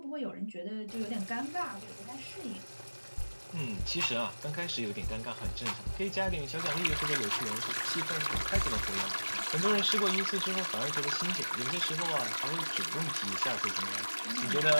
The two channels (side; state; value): both; inverted; correlation -1.00